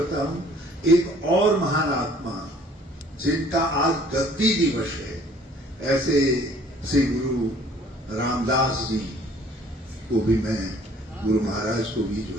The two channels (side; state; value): both; normal; correlation 0.55